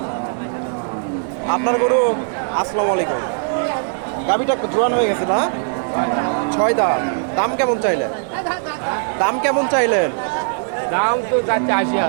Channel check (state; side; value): silent; left; digital silence